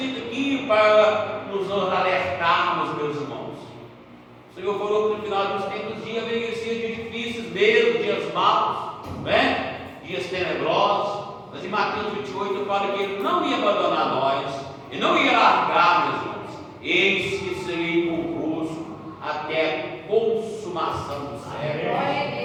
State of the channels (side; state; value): both; identical; correlation 1.00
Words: aqui para nos alertarmos, meus irmãos. O Senhor falou que no final dos tempos dias venham dias difíceis mesmo, dias maus, né? Dias tenebrosos. Mas em Mateus 28 fala que Ele não ia abandonar nós, Ele não ia largar, meus irmãos. Eis que serei convosco até a consumação do século.